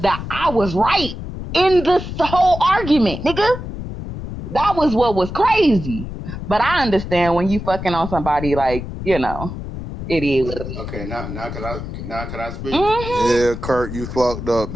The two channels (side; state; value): left; noise; rumble, 8 dB below the sound